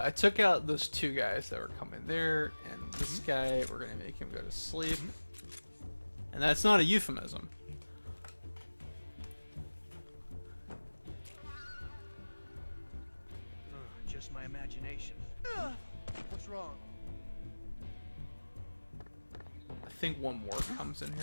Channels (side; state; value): both; inverted; correlation -1.00